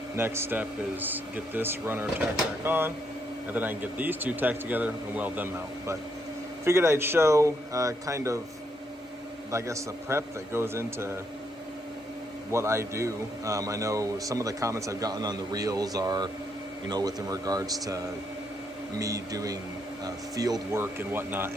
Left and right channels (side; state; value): both; normal; correlation 0.76